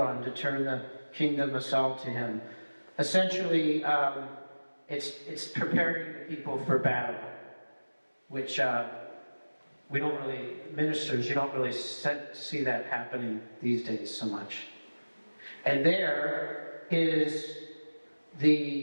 to turn the kingdom of Saul to him. Essentially, it's preparing the people for battle, which we don't really, ministers, you don't really see that happening these days so much. And there is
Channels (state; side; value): inverted; both; correlation -1.00